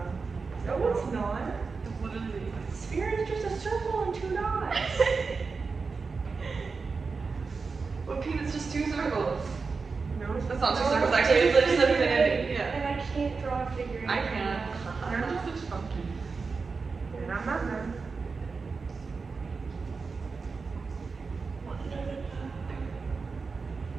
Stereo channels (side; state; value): left; quieter; 4.6 dB